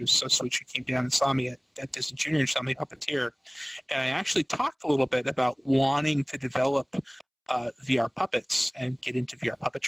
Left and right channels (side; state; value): both; identical; correlation 1.00